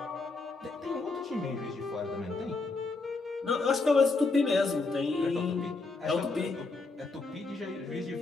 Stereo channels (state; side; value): quieter; right; 3.7 dB